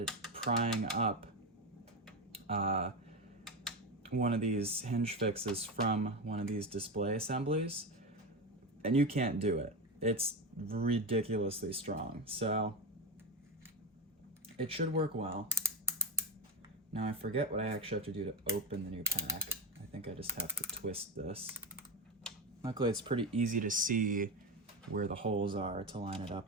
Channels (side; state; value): both; normal; correlation 0.16